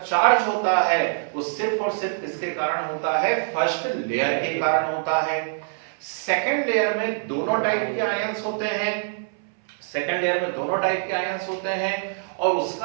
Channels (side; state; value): left; silent; 61 dB below the other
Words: होता है वो सिर्फ और सिर्फ किसके कारण होता है? फर्स्ट लेयर के कारण होता है। सेकंड लेयर में दोनों टाइप के आयंस होते हैं, सेकंड लेयर में दोनों टाइप के आयंस होते हैं, और